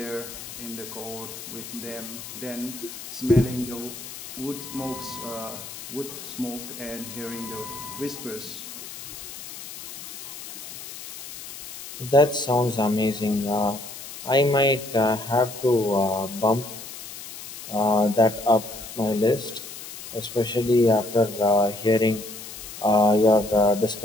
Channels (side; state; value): left; noise; hiss, 12 dB below the sound